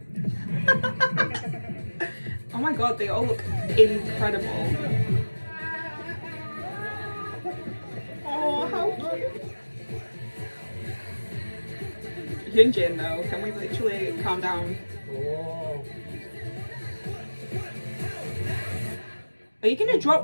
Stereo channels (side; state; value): both; inverted; correlation -1.00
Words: Oh my god, they all look incredible. Oh, how cute. Hyunjin though, can we literally calm down? Are you gonna